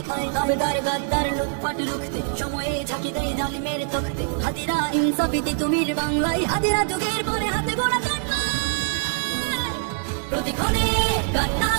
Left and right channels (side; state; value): left; silent; digital silence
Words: খায়, দাবেদার গাদ্দার লুটপাট রুখতে সময়ে ঝাঁকি দেয় জালিমের তখতে, হাদিরা ইনসাফিতি তুমির বাংলায়, হাদিরা যুগের পরে হাতে গোড়া প্রতিক্ষণে